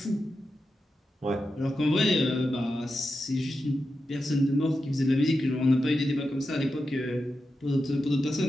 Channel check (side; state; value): both; normal; correlation 0.89